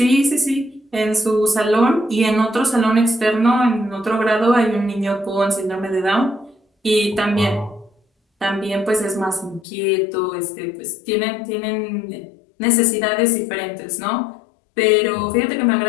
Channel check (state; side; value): drops out; right; at 9.7 s